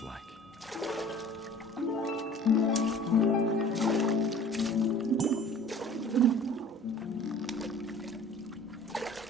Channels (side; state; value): both; normal; correlation 0.47